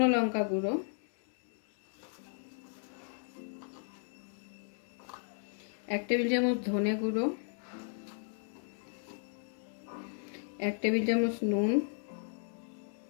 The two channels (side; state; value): right; silent; digital silence